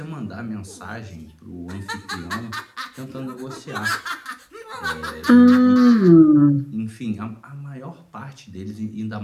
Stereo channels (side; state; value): both; identical; correlation 1.00